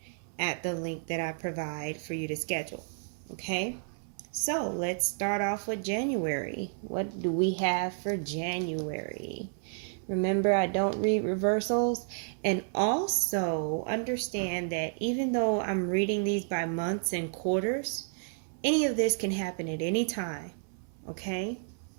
at the link that I provide for you to schedule. Okay? So let's start off with January. What do we have for January? Remember, I don't read reversals. And also understand that even though I'm reading these by months and quarters, any of this can happen at any time. Okay?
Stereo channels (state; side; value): silent; left; 57 dB below the other